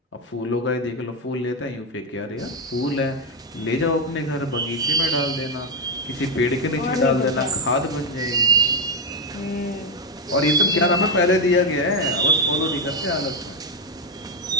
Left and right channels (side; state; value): both; normal; correlation 0.05